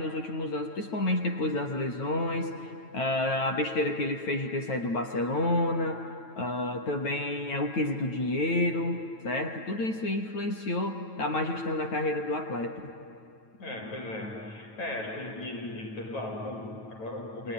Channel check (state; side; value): late; right; 9.2 ms